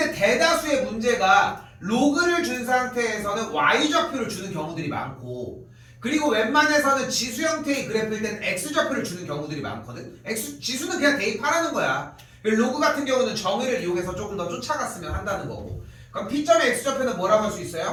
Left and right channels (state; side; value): identical; both; correlation 1.00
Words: 대다수의 문제가 로그를 준 상태에서는 Y좌표를 주는 경우들이 많고, 그리고 웬만해서는 지수 형태의 그래프일 때는 X좌표를 주는 경우들이 많거든. 지수는 그냥 대입하라는 거야. 로그 같은 경우는 정의를 이용해서 조금 더 쫓아갔으면 한다는 거고. 그럼 P점의 X좌표는 뭐라고 할 수